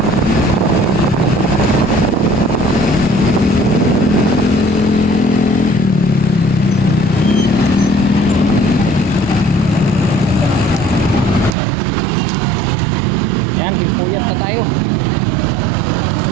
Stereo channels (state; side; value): drops out; left; at 11.6 s